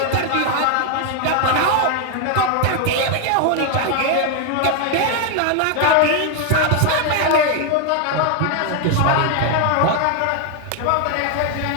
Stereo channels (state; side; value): different; both; correlation 0.01